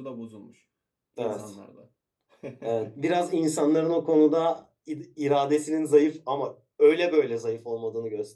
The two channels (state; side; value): identical; both; correlation 1.00